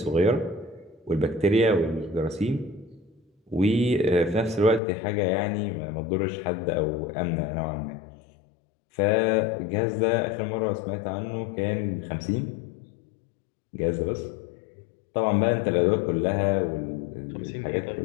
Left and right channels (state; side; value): drops out; right; at 4.8 s